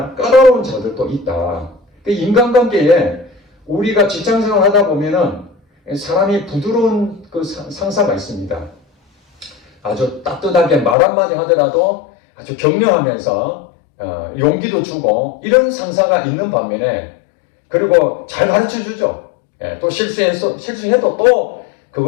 까다로운 자들도 있다. 인간관계에 우리가 직장생활 하다 보면은 사람이 부드러운 그 상사가 있습니다. 아주 따뜻하게 말 한마디 하더라도 아주 격려하면서 용기도 주고 이런 상사가 있는 반면에 그리고 잘 가르쳐 주죠. 또 실수해도 또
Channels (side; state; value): right; drops out; at 11.0 s